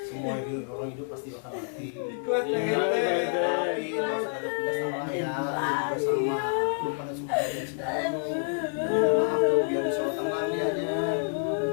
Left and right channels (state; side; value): silent; right; 59 dB below the other